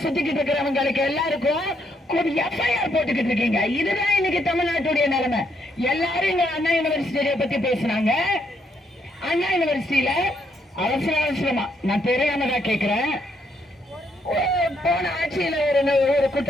சுத்திக்கிட்டு இருக்கிறவங்களுக்கு எல்லாருக்கும் எஃப்ஐஆர் போட்டுக்கிட்டு இருக்கீங்க. இதுதான் இன்னைக்கு தமிழ்நாட்டுடைய நிலைமை. எல்லாரும் இங்க அண்ணா யூனிவர்சிட்டியை பத்தி பேசினாங்க. அண்ணா யூனிவர்சிட்டியில அவசரமா நான் தெரியாமதா கேக்குறேன். போன ஆட்சியில ஒரு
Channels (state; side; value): normal; both; correlation 0.73